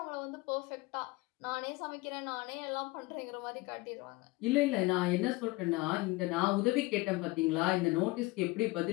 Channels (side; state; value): right; quieter; 22.4 dB